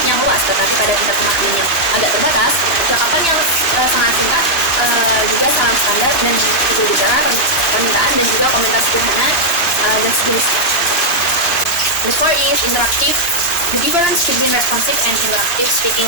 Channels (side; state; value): right; late; 2.0 ms